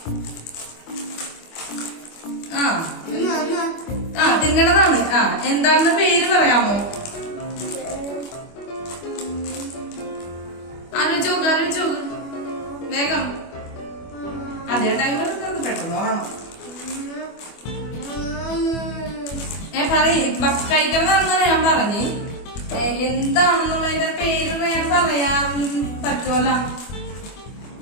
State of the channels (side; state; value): right; late; 25 ms